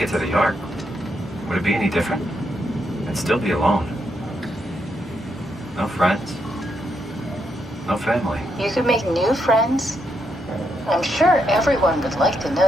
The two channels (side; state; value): both; normal; correlation 0.79